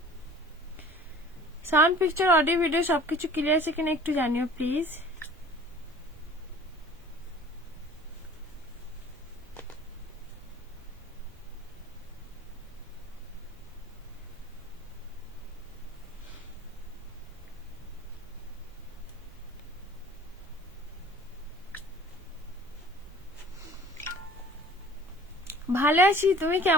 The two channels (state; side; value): normal; both; correlation 0.47